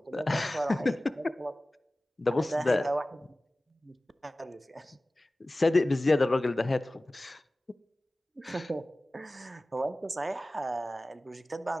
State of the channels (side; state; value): both; normal; correlation 0.97